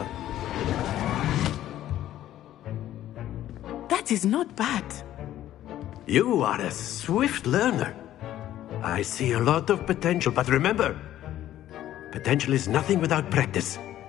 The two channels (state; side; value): quieter; right; 12.9 dB